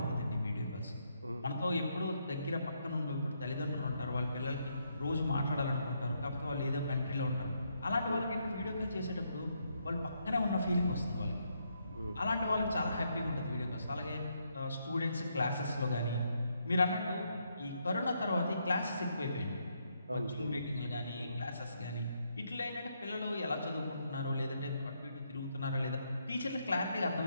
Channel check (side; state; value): both; inverted; correlation -0.77